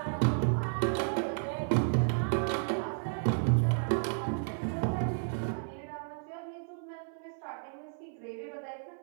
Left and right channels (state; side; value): silent; left; 56 dB below the other